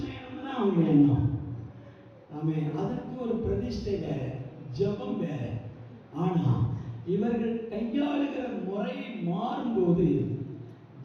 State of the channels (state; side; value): identical; both; correlation 1.00